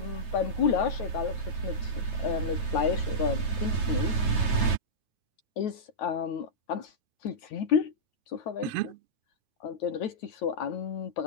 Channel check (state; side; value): late; right; 9.3 ms